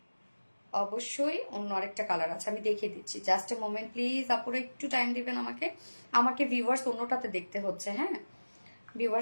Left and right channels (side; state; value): both; inverted; correlation -1.00